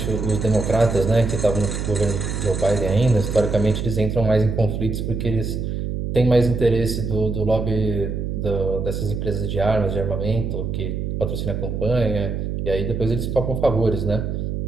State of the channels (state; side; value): noise; right; hum, 3 dB below the sound